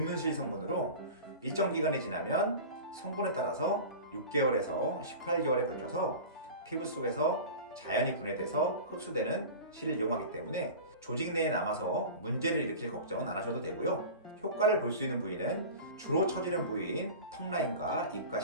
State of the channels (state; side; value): inverted; both; correlation -0.34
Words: 실 성분으로 일정 기간이 지나면 성분에 따라서 6개월에서 18개월에 걸쳐서 피부 속에서 자연히 분해돼서 흡수되는 실을 이용하기 때문에 조직 내에 남아서 문제를 일으킬 걱정은 안 하셔도 되고요. 효과를 볼 수 있는 부위는 주로 처지는 부위인 턱 라인과 입과